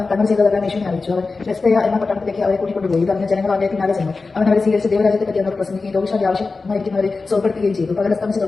തങ്ങൾ ചെയ്തതെല്ലാം യേശുവിനെ അറിയിച്ചു. അവൻ ബെസ്തയ എന്ന പട്ടണത്തിലേക്ക് അവരെ കൂട്ടിക്കൊണ്ടുപോയി. ഇതറിഞ്ഞ ജനങ്ങൾ അവന്റെ പിന്നാലെ ചെന്നു. അവൻ അവരെ സ്വീകരിച്ച് ദൈവരാജ്യത്തെ പറ്റി അവരോട് പ്രസംഗിക്കുകയും രോഗശാന്തി ആവശ്യമായിരിക്കുന്നവരെ സുഖപ്പെടുത്തുകയും ചെയ്തു. പകലസ്തമിച്ച്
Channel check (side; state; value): right; quieter; 4.0 dB